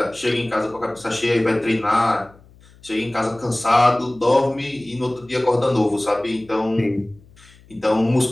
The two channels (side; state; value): left; noise; hum, 26 dB below the sound